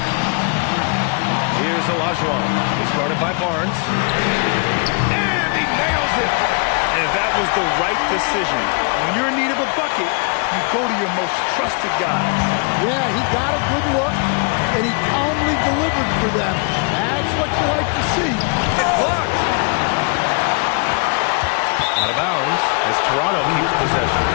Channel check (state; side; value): quieter; right; 37.3 dB